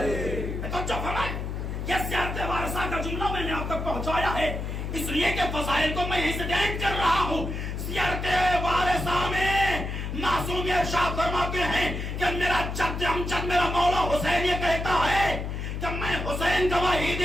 یہ زیارت وارثہ کا جملہ میں نے آپ تک پہنچایا ہے اس لیے کہ فضائل کو میں یہیں سے بیان کر رہا ہوں. زیارت وارثہ میں معصوم ارشاد فرماتے ہیں کہ میرا جد امجد میرا مولا حسین یہ کہتا ہے کہ میں حسین گواہی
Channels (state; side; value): noise; left; hum, 4 dB below the sound